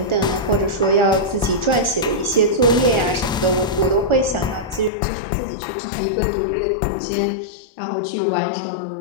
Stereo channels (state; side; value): drops out; right; at 4.9 s